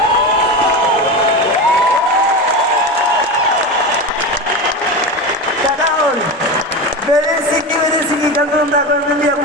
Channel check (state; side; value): normal; both; correlation 0.22